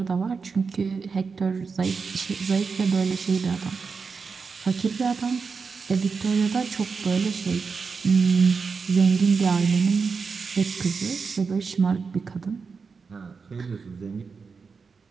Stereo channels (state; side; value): quieter; left; 5.1 dB